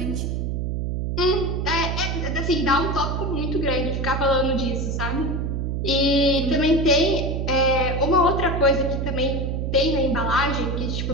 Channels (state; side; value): noise; right; hum, 1 dB below the sound